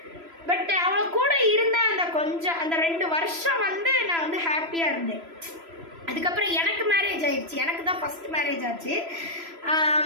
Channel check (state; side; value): late; left; 3.0 ms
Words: பட் அவளை கூட இருந்த அந்த 2 வருஷம் வந்து நான் வந்து ஹாப்பியாக இருந்தேன். அதுக்கப்புறம் எனக்கு மேரேஜ் ஆயிடுச்சு, எனக்கு தான் ஃபஸ்ட் மேரேஜ் ஆச்சு.